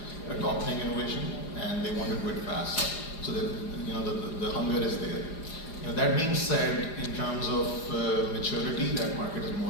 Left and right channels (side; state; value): right; late; 4.9 ms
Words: adopting innovation, and they want to do it fast. So the hunger is there. That being said, in terms of maturity, that market is